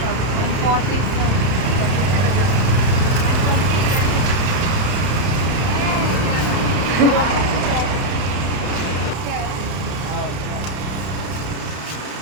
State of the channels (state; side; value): late; left; 31 ms